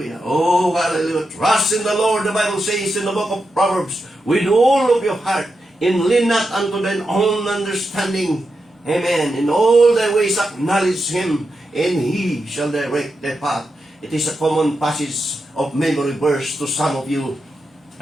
Oh, hallelujah. Trust in the Lord, the Bible says in the book of Proverbs, with all of your heart, and lean not unto thine own understanding. Amen. In all thy ways acknowledge Him, and He shall direct thy path. It is a common passage of memory verse to some of you.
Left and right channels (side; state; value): both; normal; correlation 0.87